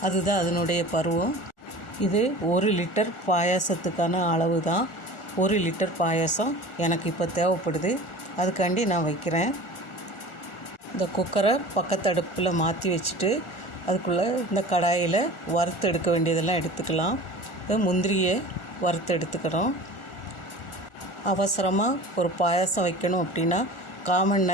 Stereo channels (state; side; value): late; right; 1.4 ms